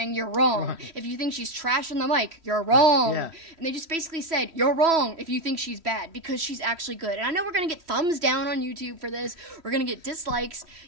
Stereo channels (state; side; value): late; left; 3.1 ms